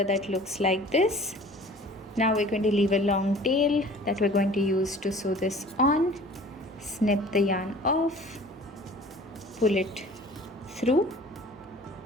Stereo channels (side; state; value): both; normal; correlation 0.47